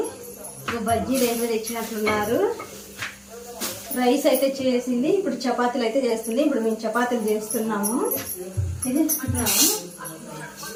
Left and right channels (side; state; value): both; identical; correlation 1.00